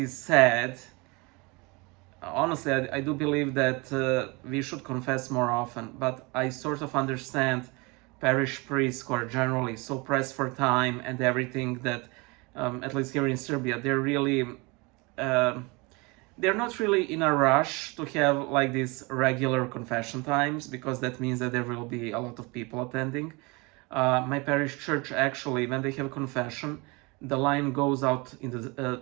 sad. Honestly, I do believe that we should confess more often, but I sort of understand parish priests who are generally so pressed for time and everything that, at least here in Serbia, they're not really in a rush to have like these regular confession times, because that means that there will be a lot of people attending. My parish church, actually, when they have a confession, the line goes out to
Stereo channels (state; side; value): quieter; left; 26.8 dB